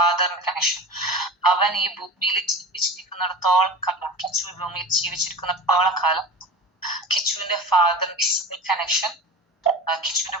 കണക്ഷൻ. അവൻ ഈ ഭൂമിയിൽ ജീവിച്ചിരിക്കുന്നിടത്തോളം കാലം, കിച്ചു ഈ ഭൂമിയിൽ ജീവിച്ചിരിക്കുന്നിടത്തോളം കാലം കിച്ചുവിന്റെ ഫാദറിന്റെ കണക്ഷൻ കിച്ചുവിന്റെ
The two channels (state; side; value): normal; both; correlation 0.32